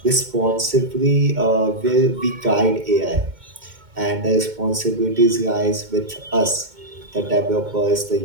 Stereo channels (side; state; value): left; late; 2.2 ms